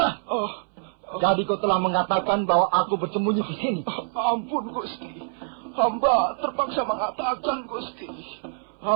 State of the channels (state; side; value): silent; left; 61 dB below the other